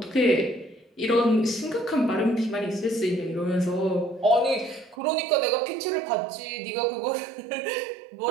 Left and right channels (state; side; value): drops out; left; at 5.0 s